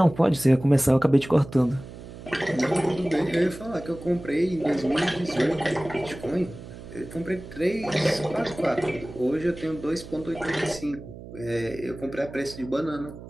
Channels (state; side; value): noise; right; hum, 14 dB below the sound